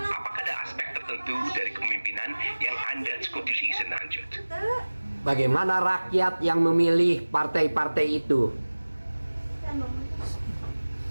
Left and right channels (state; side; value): inverted; both; correlation -1.00